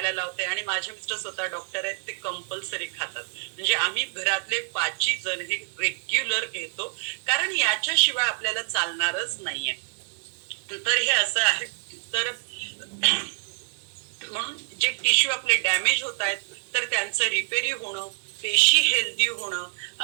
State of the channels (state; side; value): silent; left; digital silence